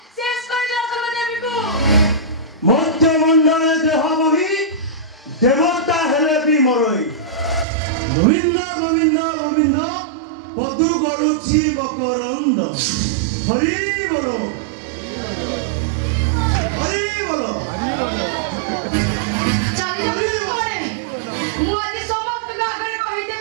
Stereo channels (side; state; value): left; drops out; at 7.7 s